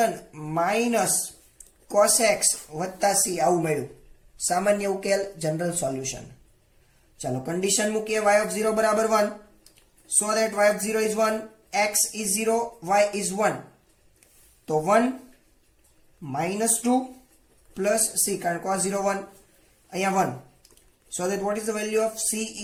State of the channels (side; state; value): both; identical; correlation 1.00